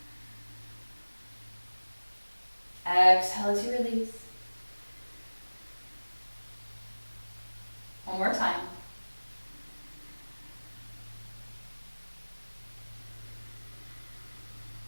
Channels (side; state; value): both; inverted; correlation -1.00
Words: Exhale as you release. One more time.